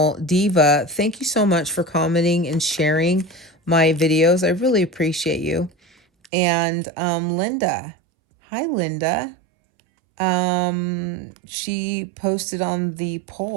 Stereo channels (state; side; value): drops out; left; at 6.3 s